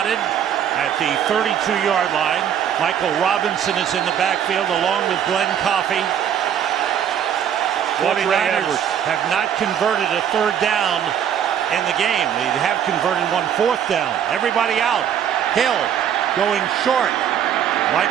at the 32-yard line. Michael Robinson is in the backfield along with Glenn Coffey. 49ers have not converted a 3rd down in the game. They have converted 1 4th down. Everybody out. Hill going short.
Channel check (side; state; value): left; quieter; 9.1 dB